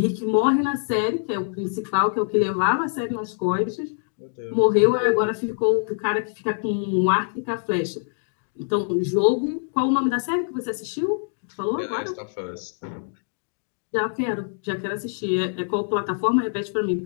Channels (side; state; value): right; silent; digital silence